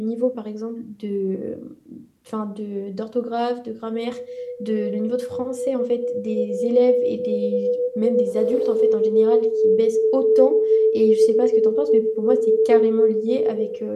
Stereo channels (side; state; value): both; identical; correlation 1.00